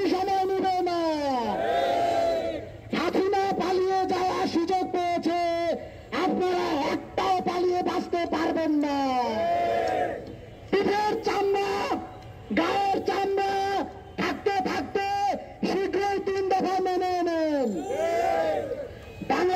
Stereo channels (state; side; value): identical; both; correlation 1.00